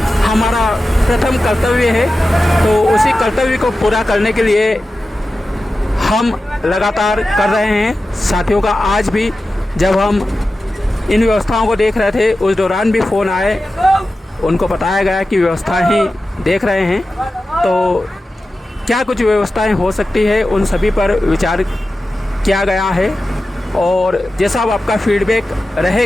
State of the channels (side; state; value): both; normal; correlation 0.93